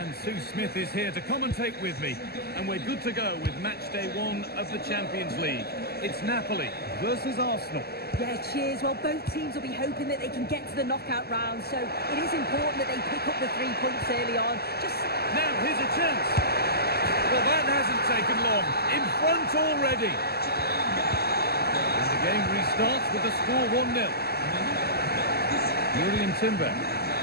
Sue Smith is here to commentate with me. And we're good to go with match day 1 of the Champions League. It's Napoli versus Arsenal. Yeah, cheers. Well, both teams will be hoping that they can get to the knockout round, so it is important that they pick up the 3 points early on. Now, here's a chance. Well, that hasn't taken long. In front already. And the game restarts with the score 1-0. Julian Timber.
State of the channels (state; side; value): late; right; 0.46 ms